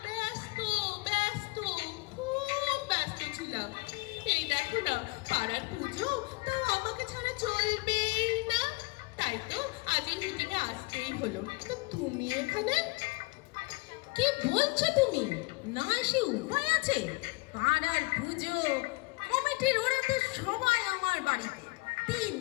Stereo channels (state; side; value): quieter; right; 26.0 dB